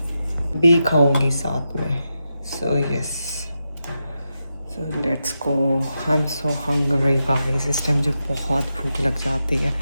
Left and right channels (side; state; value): both; inverted; correlation -0.88